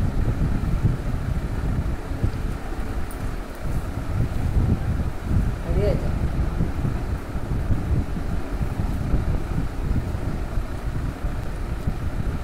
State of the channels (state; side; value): identical; both; correlation 1.00